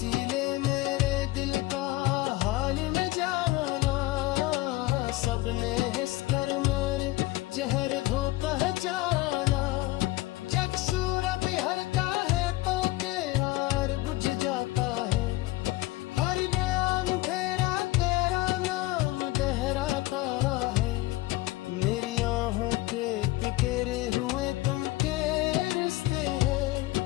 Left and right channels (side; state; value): right; quieter; 18.6 dB